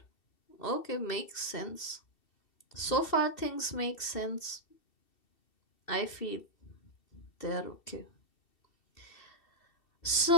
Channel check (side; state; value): right; late; 2.7 ms